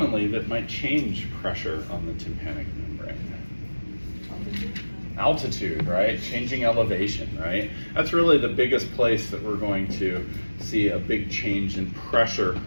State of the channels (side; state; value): both; inverted; correlation -1.00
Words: that might change pressure on the tympanic membrane? Altitude, right? Changing elevation, right? That's really the biggest place that we're going to see a big change in pressure